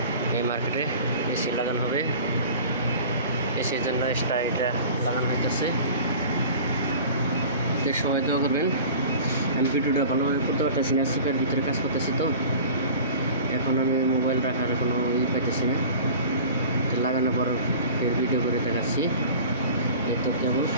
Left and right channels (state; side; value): inverted; both; correlation -0.41